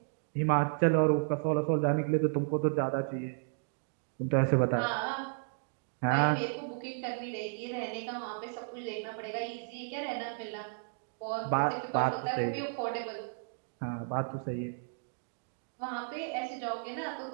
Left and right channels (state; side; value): silent; left; digital silence